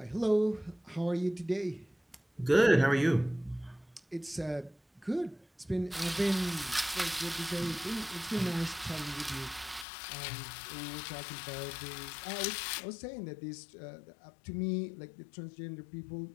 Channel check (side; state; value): right; drops out; at 9.9 s